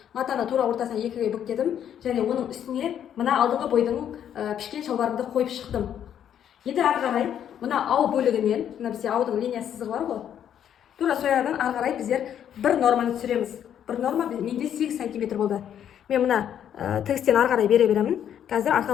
матаны тура ортасына екіге бүктедім және оның үстіне мына алдыңғы бойдың пішкен шалбарымды қойып шықтым. Енді ары қарай мына ау бөлігінен, мына бізде аудың линия сызығы бар ғой, тура соядан ары қарай біздер бір норманы түсіреміз. Бір норма менде 8 сантиметр болды. Мен мына тігістен ары қарай бере беремін. Қазір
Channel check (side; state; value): right; quieter; 9.6 dB